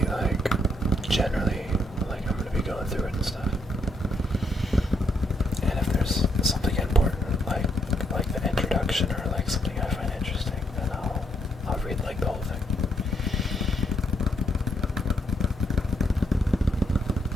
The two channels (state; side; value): normal; both; correlation 0.75